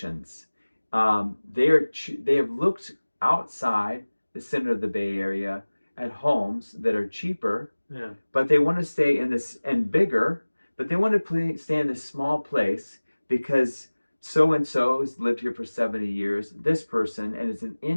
They have looked outside the center of the Bay Area at homes that are cheaper, Yeah. but they want to stay in this and bigger, but they want to stay in this small place because so and so has lived here for 70 years, this person, and it's an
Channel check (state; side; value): inverted; both; correlation -1.00